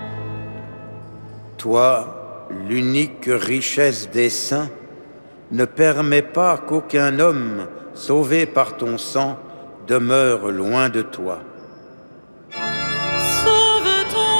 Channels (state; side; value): inverted; both; correlation -1.00